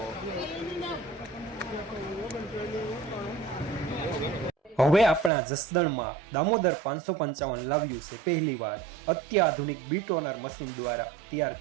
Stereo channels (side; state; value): left; drops out; at 5.3 s